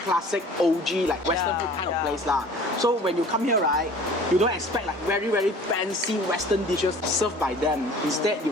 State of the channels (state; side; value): normal; both; correlation 0.47